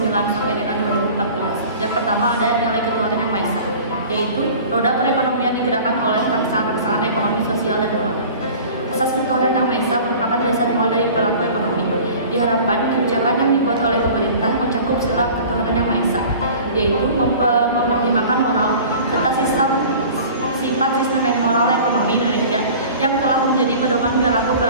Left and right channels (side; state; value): both; inverted; correlation -0.43